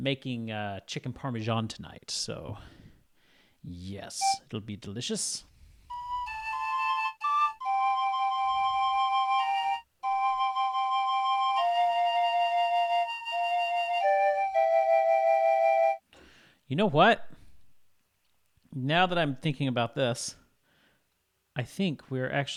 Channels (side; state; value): both; identical; correlation 1.00